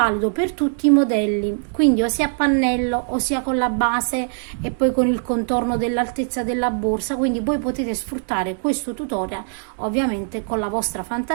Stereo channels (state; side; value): silent; left; 65 dB below the other